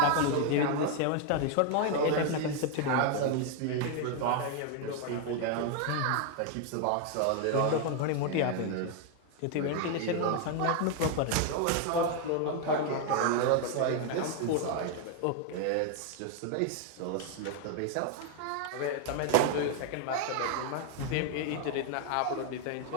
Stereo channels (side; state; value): both; different; correlation 0.01